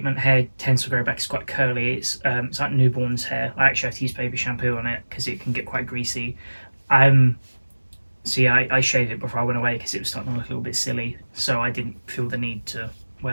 hair tends to grow back. It's quite curly. It's like newborn's hair. I actually have to use baby shampoo on it because it can get quite greasy. So yeah, I shaved it before I went away because it was starting to look a little bit silly, so I didn't feel the need to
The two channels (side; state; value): both; inverted; correlation -1.00